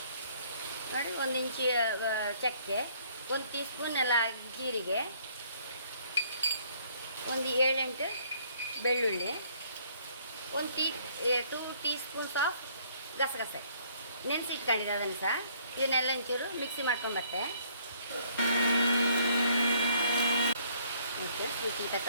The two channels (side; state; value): both; inverted; correlation -0.62